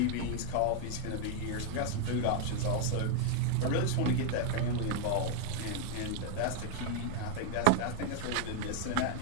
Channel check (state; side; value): different; both; correlation 0.00